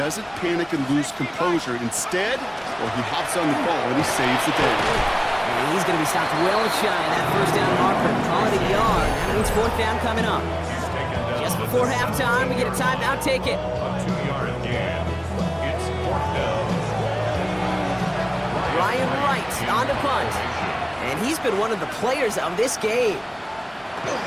panic and lose composure. Instead, well, he hops on the ball and he saves the day. And he's going to be stopped well shy of that first down marker. Call it a yard. That means 4th down coming up. Just before halftime, we get a timeout. Take it. A 2-yard gain. It's 4th down. Ryan Wright on to punt. And he's been one of the players of this game.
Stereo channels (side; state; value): both; identical; correlation 1.00